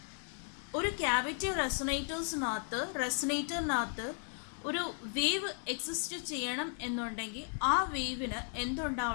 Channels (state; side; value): silent; right; 54 dB below the other